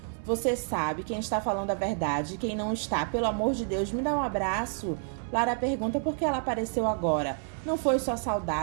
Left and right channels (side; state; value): left; silent; 58 dB below the other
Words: você sabe quem está falando a verdade e quem não está. Pelo amor de Deus, me dá um abraço. Lara pergunta por que ela apareceu agora. Não foi só